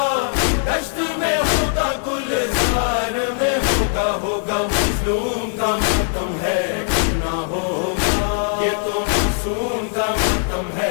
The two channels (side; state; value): right; silent; 63 dB below the other